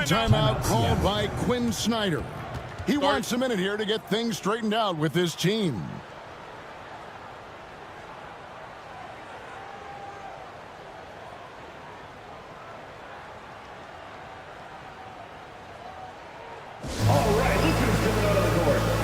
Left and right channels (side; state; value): both; identical; correlation 1.00